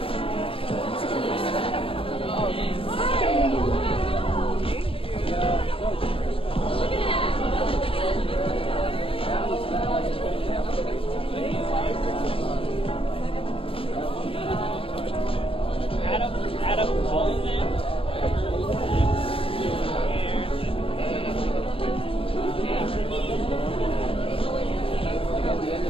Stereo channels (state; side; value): late; right; 0.27 ms